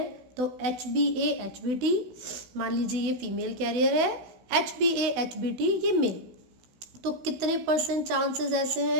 तो HbA HbT, मान लीजिए ये फीमेल कैरियर है, HbA HbT ये मेल। तो कितने % चांसेस ऐसे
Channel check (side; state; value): left; late; 16 ms